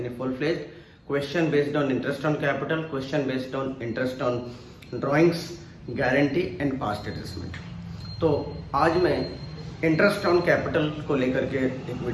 full fledged, question based on interest on capital, question based on interest on drawings, guarantee and past adjustment. तो आज मैं इंटरेस्ट ऑन कैपिटल को लेकर के एक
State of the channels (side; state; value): both; identical; correlation 1.00